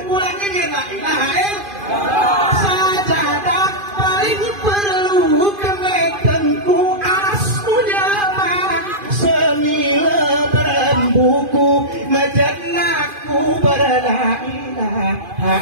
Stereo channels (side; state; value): left; late; 2.5 ms